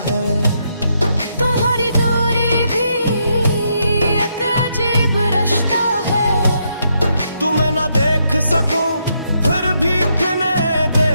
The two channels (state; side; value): inverted; both; correlation -0.78